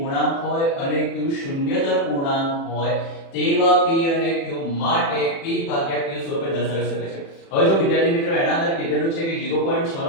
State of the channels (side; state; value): right; late; 36 ms